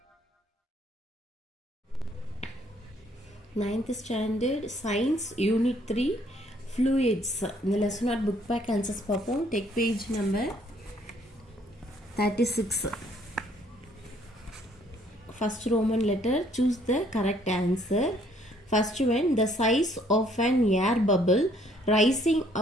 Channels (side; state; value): both; normal; correlation 0.64